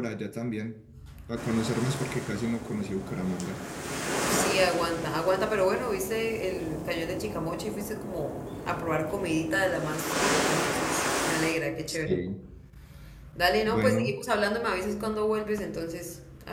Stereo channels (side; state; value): both; identical; correlation 1.00